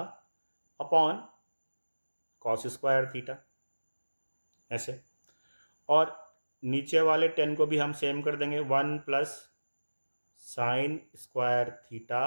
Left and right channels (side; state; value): both; inverted; correlation -1.00